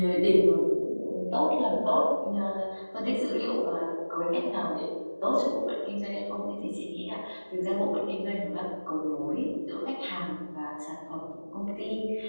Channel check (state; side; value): inverted; both; correlation -1.00